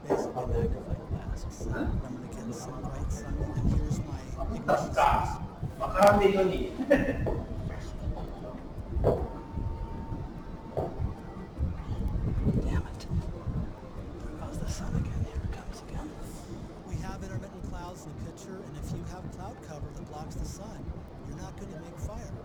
basically magnifying glass. So I'm going to get some bright sun, and here's my ignition source. Damn it. There goes the sun again. Here it comes again. We have intermittent clouds in the picture, and if you have cloud cover that blocks the sun, you're not going to make fire.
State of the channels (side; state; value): both; identical; correlation 1.00